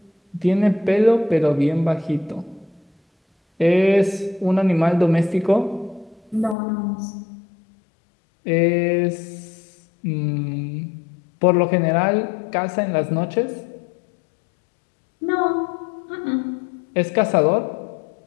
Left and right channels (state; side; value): drops out; right; at 6.6 s